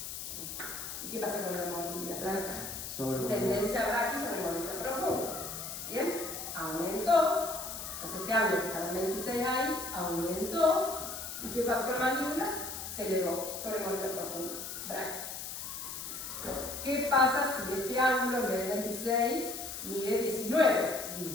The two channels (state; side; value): noise; left; hiss, 7 dB below the sound